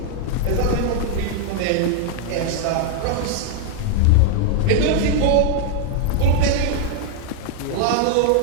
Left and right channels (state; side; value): different; both; correlation 0.00